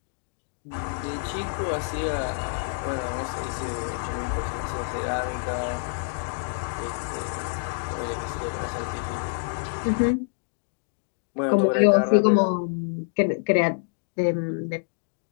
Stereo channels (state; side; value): silent; right; digital silence